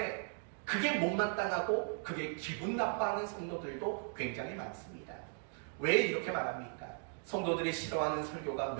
그게 못마땅하고 그게 기분 나빠하는 성도들도 굉장히 많습니다. 왜 이렇게 말합니까? 성도들이 싫어하는 설교가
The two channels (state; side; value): silent; left; 53 dB below the other